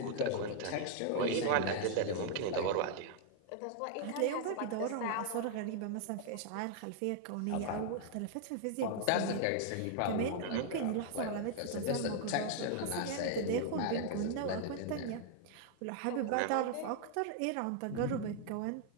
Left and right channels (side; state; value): both; different; correlation -0.01